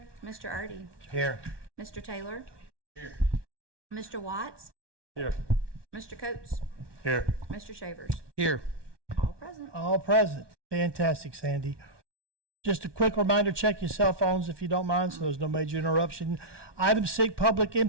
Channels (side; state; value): left; late; 1.2 ms